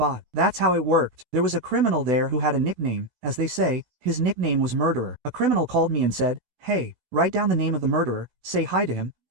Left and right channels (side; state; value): left; late; 16 ms